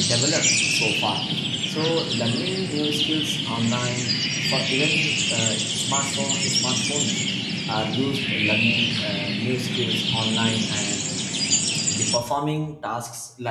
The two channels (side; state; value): both; identical; correlation 1.00